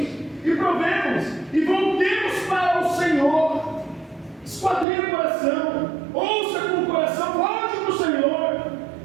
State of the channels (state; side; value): drops out; left; at 4.9 s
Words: e provemos e voltemos para o Senhor. Esquadrinhe o coração, ouça com o coração, volte para o Senhor,